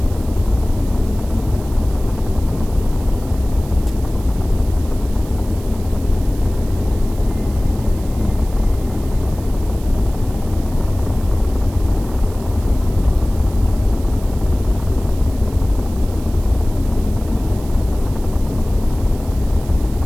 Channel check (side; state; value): right; noise; hiss, 20 dB below the sound